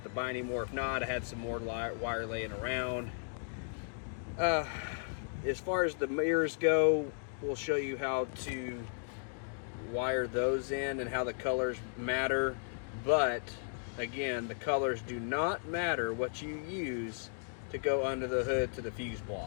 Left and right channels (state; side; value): silent; right; digital silence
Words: to buy any more. If not, I had some more wire laying around. As far as the mirrors go, we'll show you how to wire those in and how the colors matter. But again, the colors do not matter what you use to go under the hood to the fuse